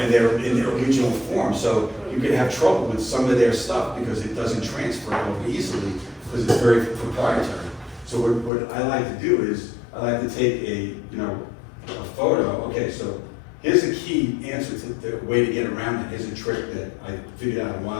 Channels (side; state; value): right; drops out; at 8.5 s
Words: original form. So you could have trouble with some of their stuff because it doesn't transfer over easily, because it's very proprietary. So what I like to do is, I like to take a photo. Okay, so here's a key answer to the way to get around it. Here's a trick that I figured out a